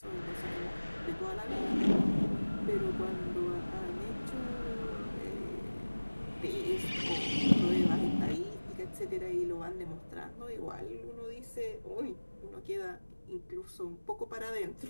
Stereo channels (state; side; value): inverted; both; correlation -1.00